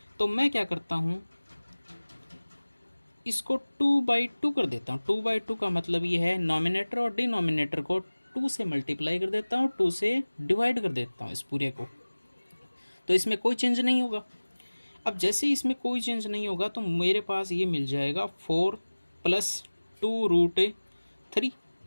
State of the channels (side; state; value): both; inverted; correlation -1.00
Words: तो मैं क्या करता हूँ, इसको 2/2 कर देता हूँ। 2/2 का मतलब ये है नॉमिनेटर और डिनोमिनेटर को 2 से मल्टीप्लाई कर देता हूँ, 2 से डिवाइड कर देता हूँ इस पूरे को, तो इसमें कोई चेंज नहीं होगा। अब जैसे इसमें कोई चेंज नहीं होगा तो मेरे पास ये मिल जाएगा 4 प्लस